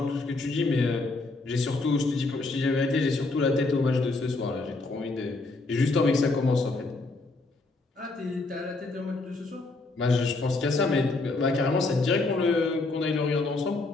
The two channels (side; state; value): right; quieter; 3.4 dB